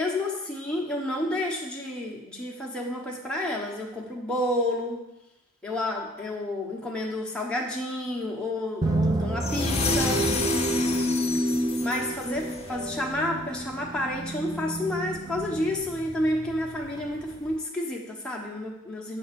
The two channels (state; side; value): normal; both; correlation 0.61